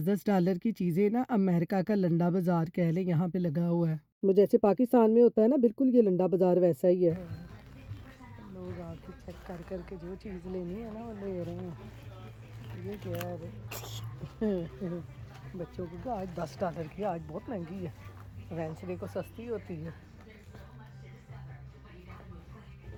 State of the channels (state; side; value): identical; both; correlation 1.00